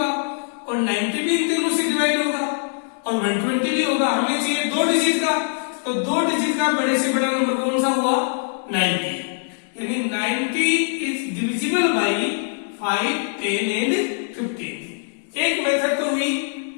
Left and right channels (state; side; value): silent; right; digital silence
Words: और 90 भी इन तीनों से डिवाइड होगा और 120 भी होगा। हमें चाहिए 2 डिजिट का, तो 2 डिजिट का बड़े से बड़ा नंबर कौन सा हुआ, 90। यानी 90 इज डिविजिबल बाई 5, 10 एंड 15। एक मेथड तो हुई